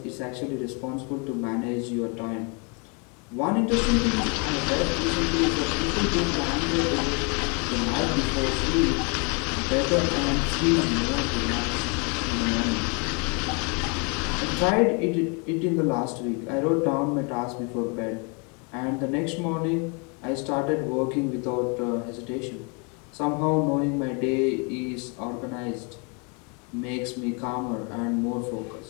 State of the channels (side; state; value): right; quieter; 34.2 dB